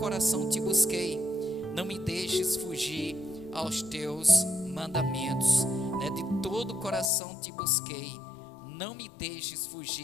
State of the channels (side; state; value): right; drops out; at 7.1 s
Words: te busquei, não me deixes fugir aos teus mandamentos, né? De todo o coração te busquei, não me deixes